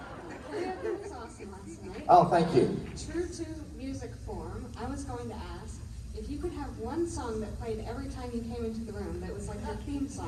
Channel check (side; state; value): both; identical; correlation 1.00